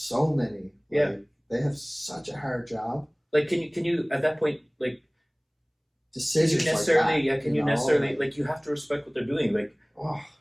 many. Yeah. They have such a hard job. Like, can you at that point, like, decisions can you necessarily, like that, can you necessarily, like, you have to respect what they're doing, like,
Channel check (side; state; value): both; identical; correlation 1.00